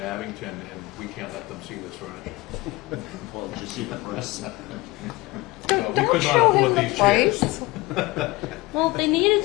and we can't let them see this furniture. Well, did you see the price? No, we Don't could not show him afford the these chairs. price. Well, they needed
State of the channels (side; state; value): right; quieter; 21.1 dB